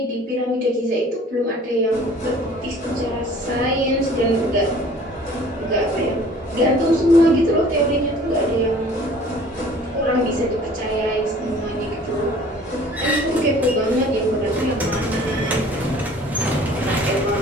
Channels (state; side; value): normal; both; correlation 0.50